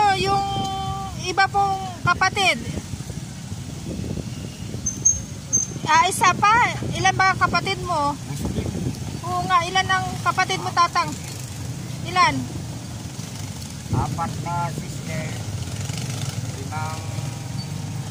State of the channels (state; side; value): identical; both; correlation 1.00